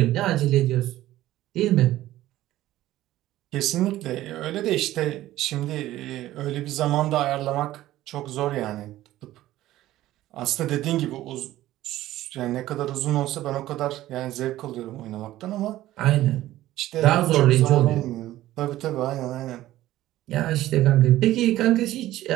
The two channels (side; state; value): left; quieter; 15.0 dB